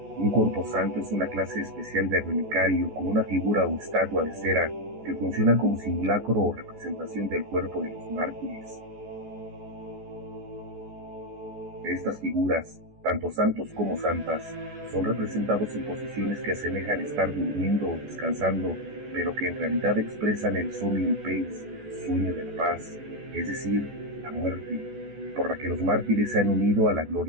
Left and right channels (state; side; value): late; left; 14 ms